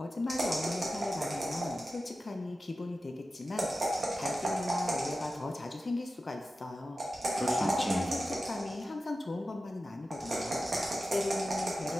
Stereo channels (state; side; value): normal; both; correlation 0.93